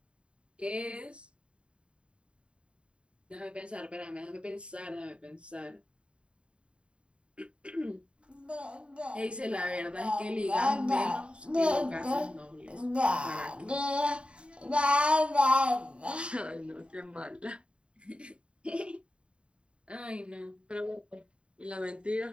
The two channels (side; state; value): left; late; 0.056 ms